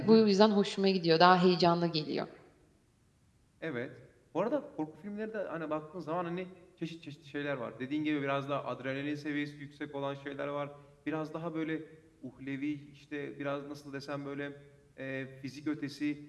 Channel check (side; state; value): both; identical; correlation 1.00